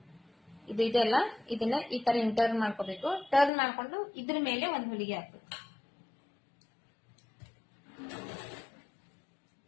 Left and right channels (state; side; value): drops out; right; at 3.5 s